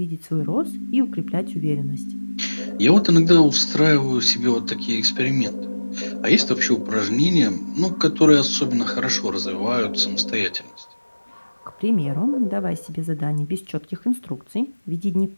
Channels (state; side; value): inverted; both; correlation -1.00